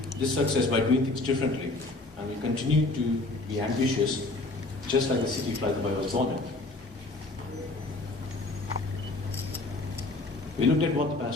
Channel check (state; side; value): quieter; right; 3.0 dB